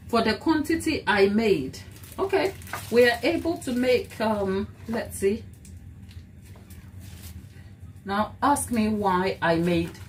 For the quantity I made, okay, we are able to make, let's see. Now, ask me why I made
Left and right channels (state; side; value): identical; both; correlation 1.00